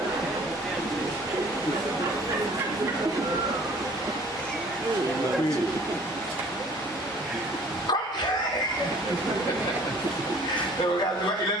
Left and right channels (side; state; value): both; normal; correlation 0.53